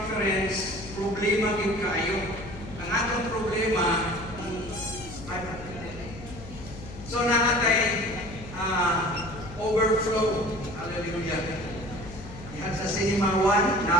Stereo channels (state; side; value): noise; left; hum, 14 dB below the sound